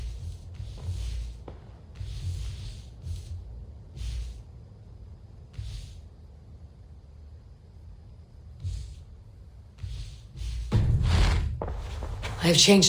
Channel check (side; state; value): both; identical; correlation 1.00